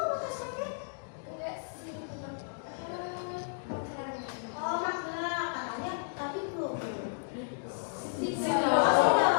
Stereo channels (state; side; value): silent; right; digital silence